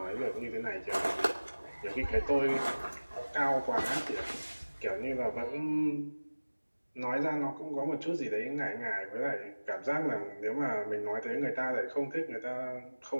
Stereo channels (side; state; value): both; inverted; correlation -1.00